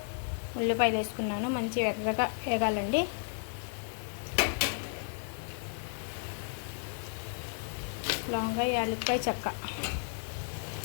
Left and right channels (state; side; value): silent; right; digital silence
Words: ఉల్లిపాయలు వేసుకున్నాను. మంచి ఎర్రగా వేగాలండి. లవంగా, యాలక్కాయ, చెక్క